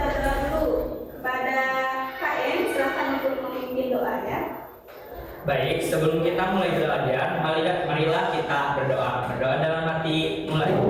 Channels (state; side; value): identical; both; correlation 1.00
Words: berdoa dulu kepada KM. Silakan untuk memimpin doa ya. Baik, sebelum kita mulai belajar, marilah kita berdoa. Berdoa dalam hati, mulai.